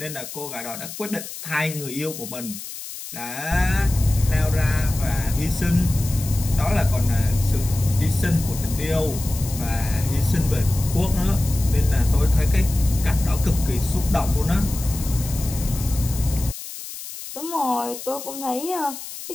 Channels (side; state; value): left; noise; hiss, 11 dB below the sound